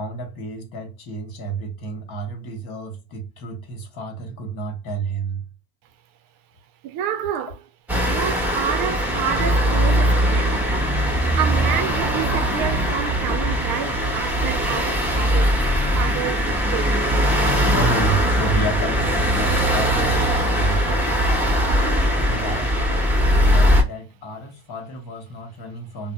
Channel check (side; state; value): both; normal; correlation 0.50